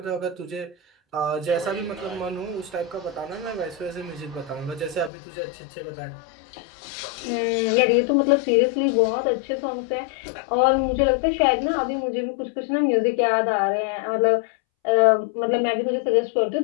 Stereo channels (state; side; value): drops out; right; at 5.1 s